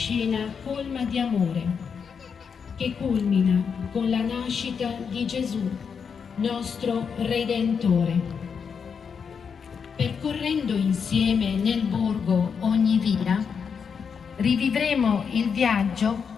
colma di amore che culmina con la nascita di Gesù, nostro Redentore. Percorrendo insieme nel borgo ogni via, rivivremo il viaggio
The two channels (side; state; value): right; quieter; 6.4 dB